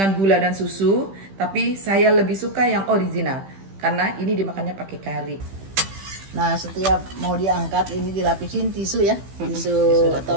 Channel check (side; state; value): left; late; 15 ms